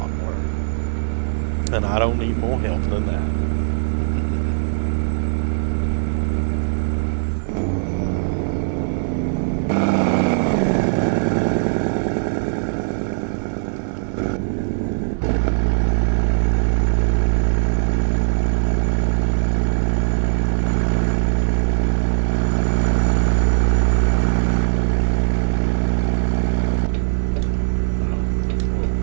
more. And I don't need more help than that.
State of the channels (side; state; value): left; silent; digital silence